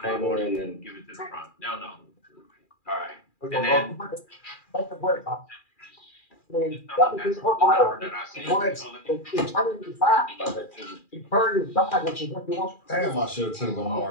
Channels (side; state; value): right; late; 2.4 ms